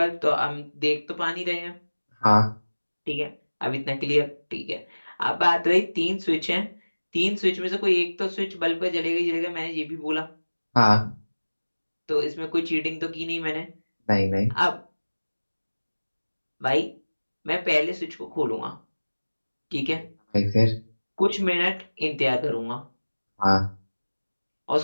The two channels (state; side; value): inverted; both; correlation -1.00